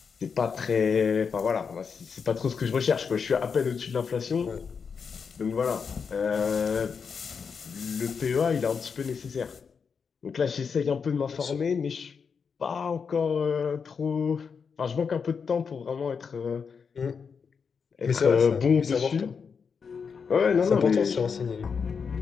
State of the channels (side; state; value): right; quieter; 6.0 dB